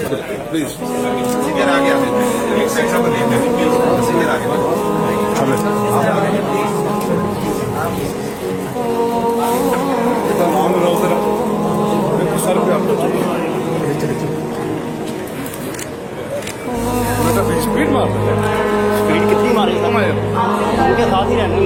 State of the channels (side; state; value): both; identical; correlation 1.00